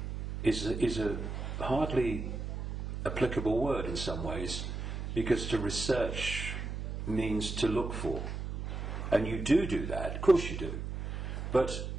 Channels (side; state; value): right; noise; hum, 5 dB below the sound